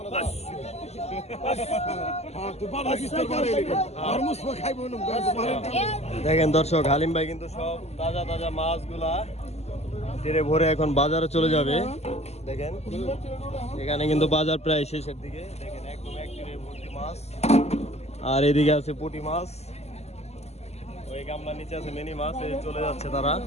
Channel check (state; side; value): late; right; 0.31 ms